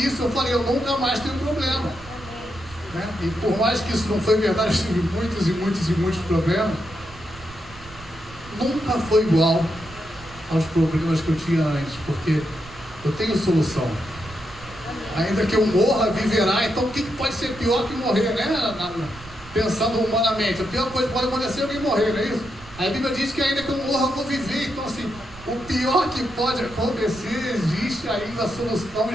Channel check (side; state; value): right; noise; rumble, 19 dB below the sound